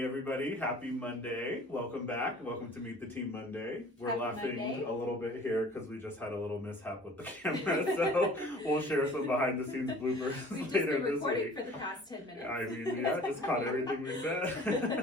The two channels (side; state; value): both; normal; correlation 0.48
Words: everybody, happy Monday. Welcome back. Welcome to Meet the Team Monday. We're Happy laughing Monday. a little bit here because we just had a little mishap with the camera, so we'll share some behind the scenes bloopers We've just later been this recording week. for the past 10 minutes. I mean, yeah, just caught everything we